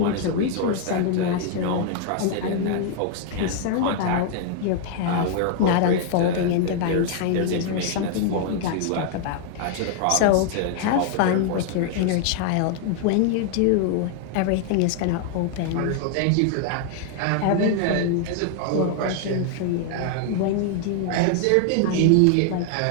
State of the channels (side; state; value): both; different; correlation 0.00